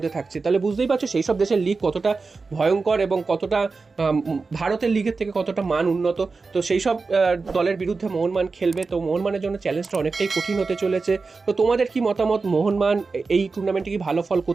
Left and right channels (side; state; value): left; quieter; 4.2 dB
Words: থাকছে। তাহলে বুঝতেই পারছো সেই সব দেশের লিগ কতটা ভয়ঙ্কর এবং কতটা ভারতের লিগের থেকে কতটা মান উন্নত। তো সেই সব দলের বিরুদ্ধে মোহনবাগান খেলবে, তো মোহনবাগানের জন্য চ্যালেঞ্জটা অনেকটাই কঠিন হতে চলেছে। তো তোমাদের কি মতামত, মোহনবাগান এই টুর্নামেন্টে কি ভালো ফল